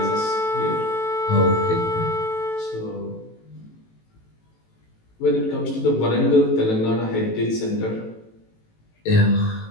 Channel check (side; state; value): right; late; 18 ms